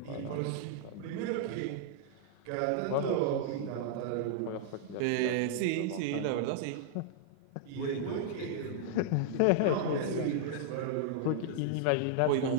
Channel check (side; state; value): both; different; correlation -0.01